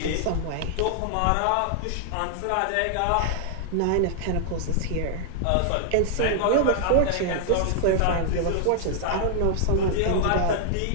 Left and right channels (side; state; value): both; different; correlation -0.01